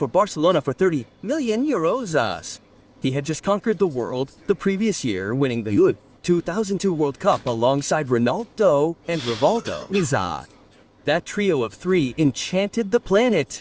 Barcelona for 30 million euros. He had just conquered the world the previous year, winning the 2002 World Cup alongside Ronaldo and Rivaldo. That trio of three enchanted the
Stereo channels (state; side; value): identical; both; correlation 1.00